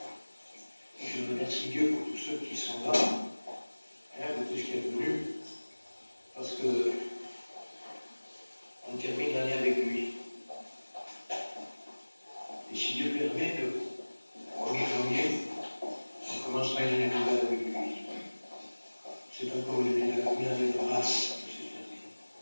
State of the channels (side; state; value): both; inverted; correlation -1.00